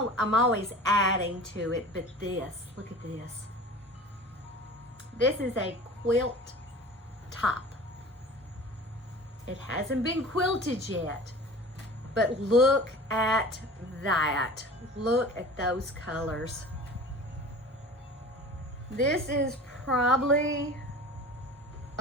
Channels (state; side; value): normal; both; correlation 0.39